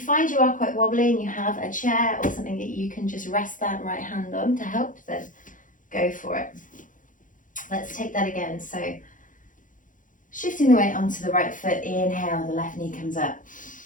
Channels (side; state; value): right; late; 0.38 ms